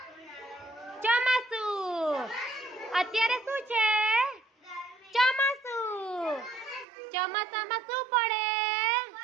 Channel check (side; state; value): left; drops out; at 6.9 s